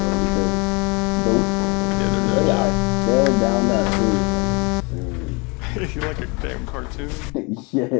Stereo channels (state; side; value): quieter; right; 29.5 dB